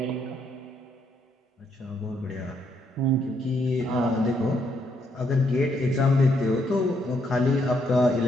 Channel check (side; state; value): both; normal; correlation 0.74